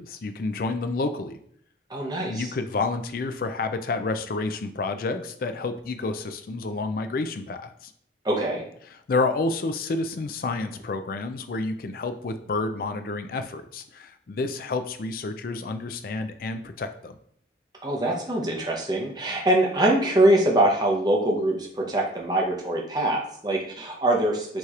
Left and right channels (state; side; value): normal; both; correlation 0.43